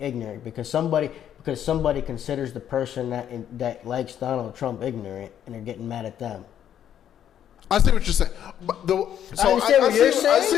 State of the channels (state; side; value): quieter; right; 10.0 dB